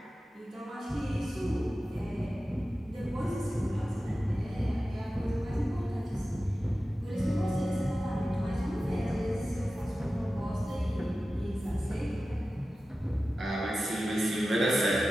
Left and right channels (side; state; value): both; normal; correlation 0.94